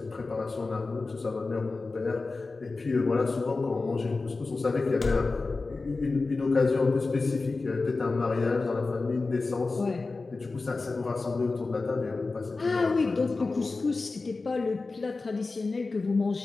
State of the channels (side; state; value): right; quieter; 3.7 dB